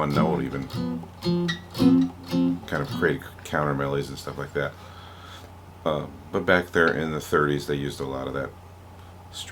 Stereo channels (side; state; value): both; identical; correlation 1.00